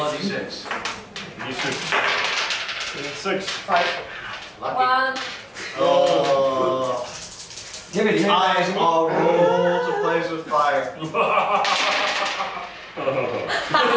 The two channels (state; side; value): identical; both; correlation 1.00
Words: a d6. D6. 6. 5. Lucky. 1. Oh. Give it. Eyes all roll to place with fire.